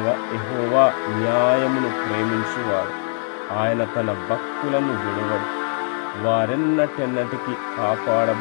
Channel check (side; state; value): right; silent; digital silence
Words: యెహోవా న్యాయమును ప్రేమించువాడు. ఆయన తన భక్తులను విడువడు. వారెన్నటెన్నటికి